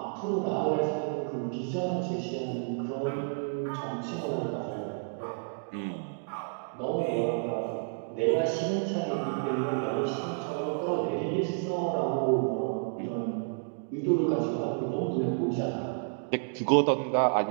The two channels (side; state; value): left; silent; digital silence